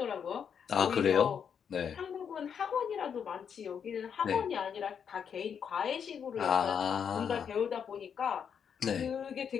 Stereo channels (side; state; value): right; quieter; 7.4 dB